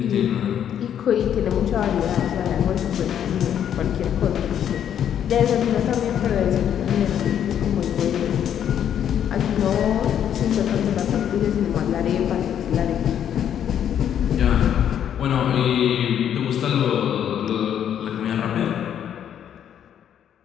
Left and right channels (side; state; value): right; quieter; 9.5 dB